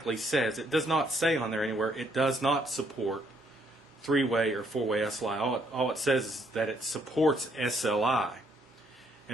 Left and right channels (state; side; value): normal; both; correlation 0.70